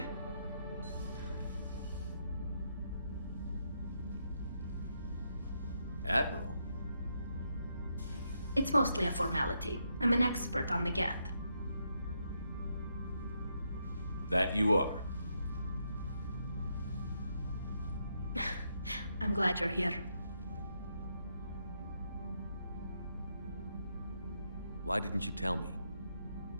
Admiral? It's mostly a formality. I'm an expert on the Geth. That you are. I'm glad you're here. Why didn't you tell me?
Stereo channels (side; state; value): both; inverted; correlation -0.79